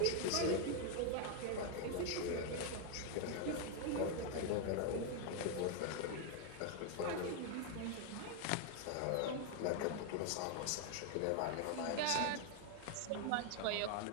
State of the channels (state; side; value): different; both; correlation 0.01